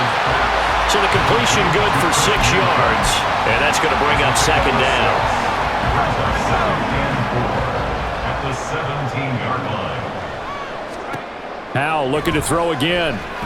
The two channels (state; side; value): identical; both; correlation 1.00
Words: So the completion good for 6 yards. And that's going to bring up 2nd down. At the 17-yard line. Howell looking to throw again.